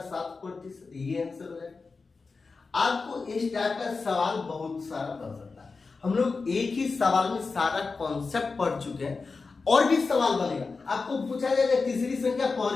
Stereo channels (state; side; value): quieter; right; 4.3 dB